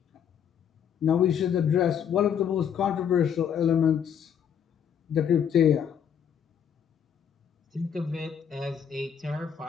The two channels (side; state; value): right; quieter; 8.2 dB